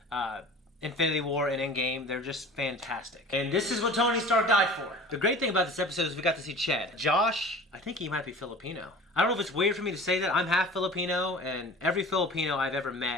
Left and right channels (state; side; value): normal; both; correlation 0.41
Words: Infinity War and Endgame, they're just fantastic. And this is what Tony Stark died for. The great thing about this episode is we got to see Chad. Josh, I think he might be Filipino. I don't know if it's weird for me to say that. I'm half Filipino, and every Filipino I've ever